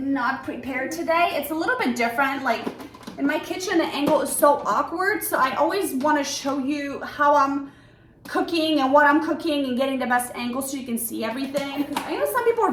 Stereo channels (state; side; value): identical; both; correlation 1.00